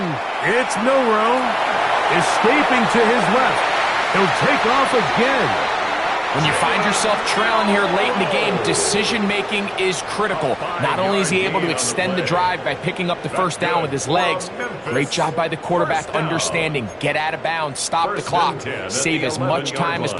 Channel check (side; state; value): both; identical; correlation 1.00